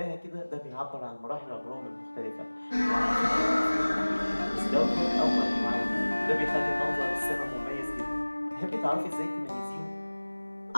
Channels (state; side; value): inverted; both; correlation -1.00